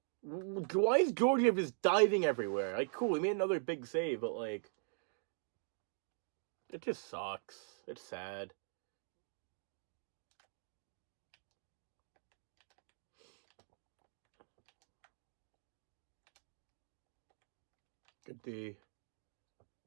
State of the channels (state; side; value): silent; left; digital silence